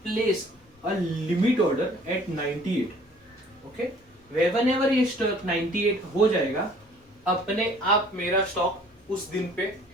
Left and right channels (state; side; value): normal; both; correlation 0.54